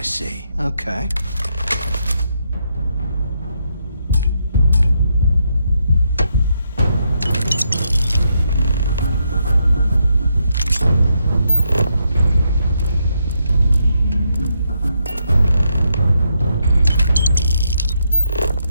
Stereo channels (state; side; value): inverted; both; correlation -0.79